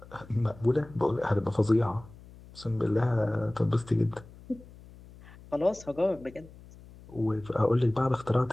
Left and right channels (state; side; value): noise; left; hum, 21 dB below the sound